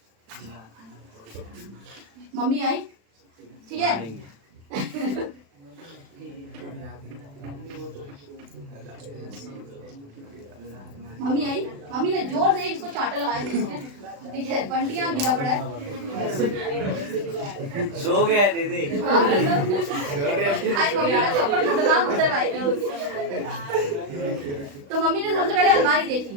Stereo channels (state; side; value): late; left; 36 ms